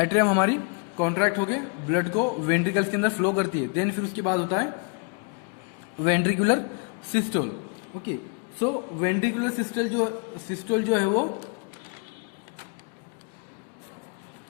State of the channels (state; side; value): quieter; right; 34.1 dB